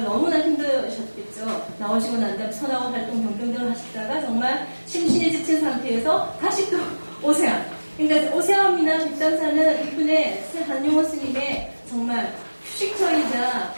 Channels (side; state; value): both; inverted; correlation -1.00